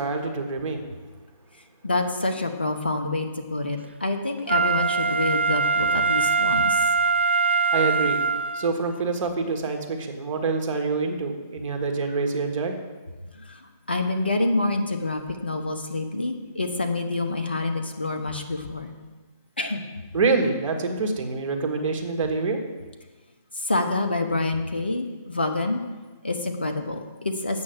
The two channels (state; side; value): inverted; both; correlation -0.53